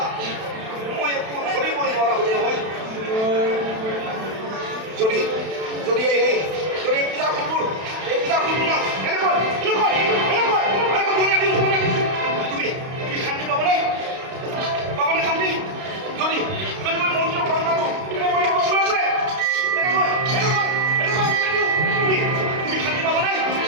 মই একো ধৰিবই নোৱাৰা হ'লো নহয়। যদি যদি এই পূজা ফুলবোৰ না তুমি শান্তি পাবনে শান্তি? যদি মই মন্দিৰৰ ঘৰ পালোঁ তুমি শান্তি পাবনে?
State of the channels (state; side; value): late; left; 32 ms